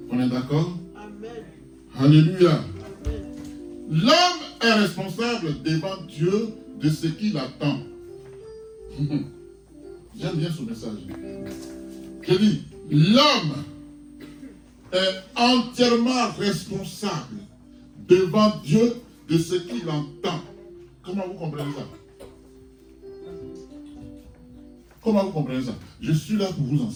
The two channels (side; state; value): both; identical; correlation 1.00